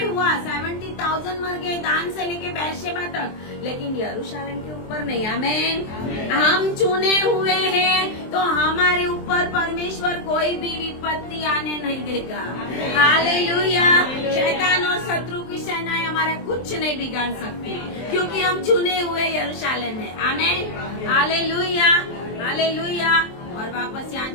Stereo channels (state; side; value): late; right; 23 ms